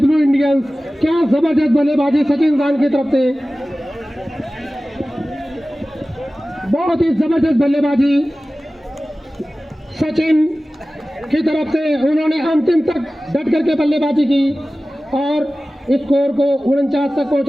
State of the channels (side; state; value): both; normal; correlation 0.96